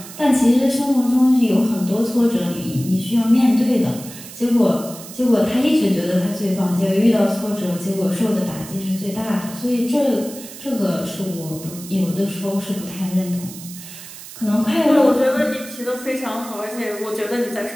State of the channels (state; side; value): noise; right; hiss, 15 dB below the sound